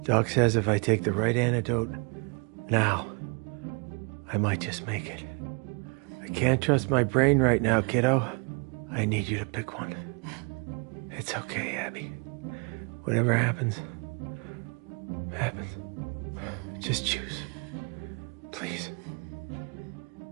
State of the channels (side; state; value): left; quieter; 34.5 dB